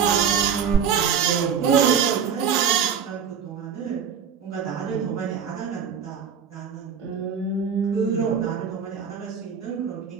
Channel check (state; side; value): quieter; left; 7.2 dB